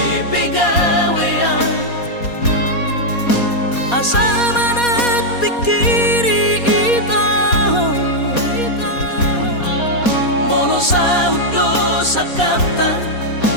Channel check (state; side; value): late; right; 4.2 ms